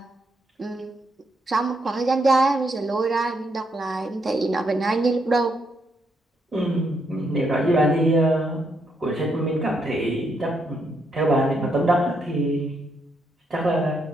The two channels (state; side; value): normal; both; correlation 0.77